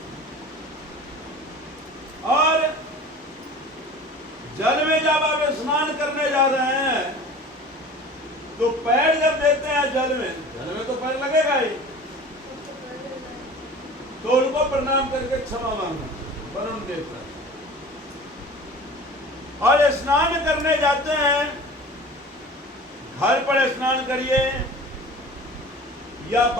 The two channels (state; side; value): normal; both; correlation 0.40